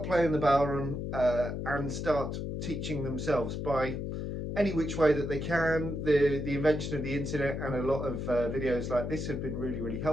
playing the Bodhran and start teaching themselves by any which way that they can. The invention of the internet and a lot of videos like this have been really, really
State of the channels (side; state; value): left; noise; hum, 4 dB below the sound